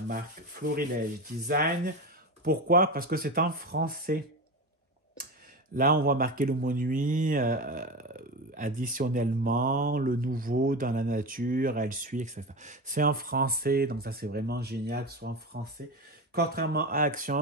marque Florilège Design. Pourquoi? Parce que c'est en français. Là, on voit marquer le mot nuit, additionnellement, le nouveau dans la nature, elle suit, etc. C'est en français, donc ça c'est vraiment génial que ce soit en français. Contrairement à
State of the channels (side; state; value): both; normal; correlation 0.23